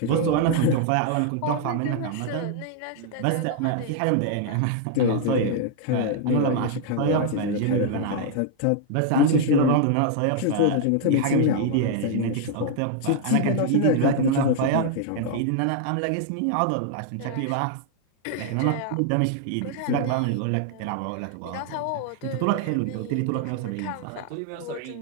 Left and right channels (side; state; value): both; different; correlation -0.01